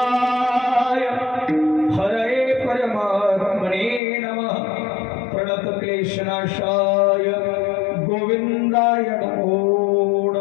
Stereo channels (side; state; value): right; drops out; at 4.0 s